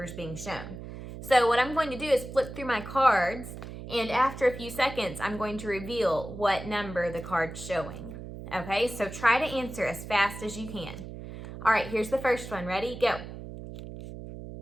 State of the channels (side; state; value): right; noise; hum, 11 dB below the sound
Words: is being shown. So what I'm going to do is flip through my cards, and after a few seconds, I'm going to reveal what number the card's showing. Okay, so try to answer as fast as you can. All right, here's the first one. Ready? Go.